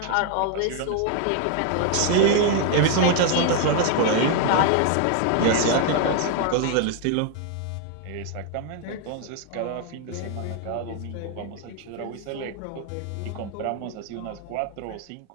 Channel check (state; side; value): different; both; correlation 0.00